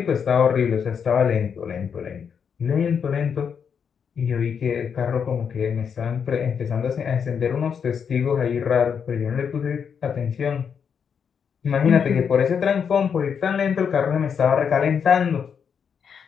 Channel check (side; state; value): right; quieter; 7.0 dB